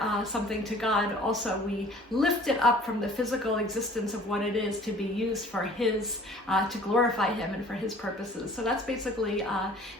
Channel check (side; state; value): both; normal; correlation 0.50